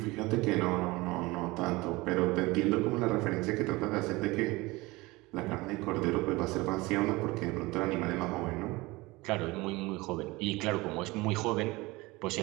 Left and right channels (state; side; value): quieter; left; 22.0 dB